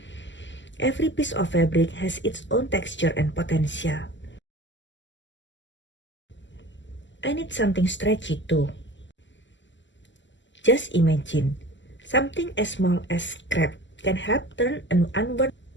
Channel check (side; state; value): right; late; 0.54 ms